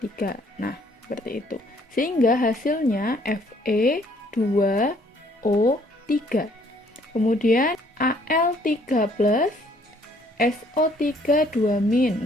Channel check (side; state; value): both; normal; correlation 0.62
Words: Nah, seperti itu. Sehingga hasilnya Fe2O3. Kemudian Al3+ SO3 2-.